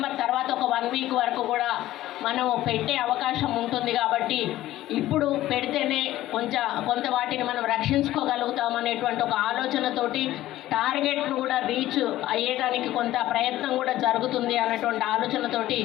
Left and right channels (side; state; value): right; quieter; 14.9 dB